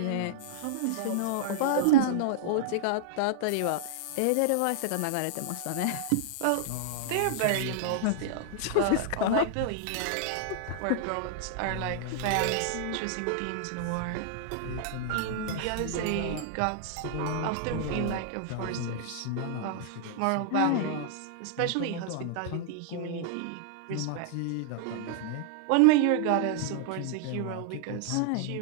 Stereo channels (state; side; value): different; both; correlation -0.01